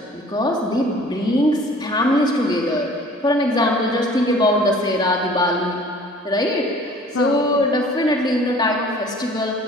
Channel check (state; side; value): normal; both; correlation 0.49